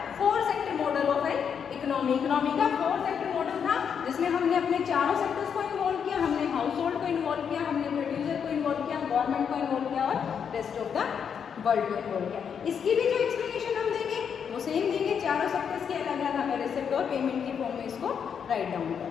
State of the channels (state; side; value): quieter; right; 7.3 dB